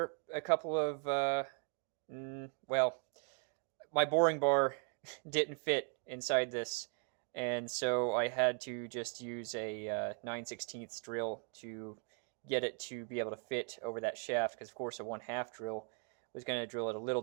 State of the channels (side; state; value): left; quieter; 39.2 dB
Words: a couple of, well, my boring bar didn't fit inside this, and so I had to just use a 9/16 drill to get it to be able to fit over that shaft, because of course a 1/2 drill was going to drill it a little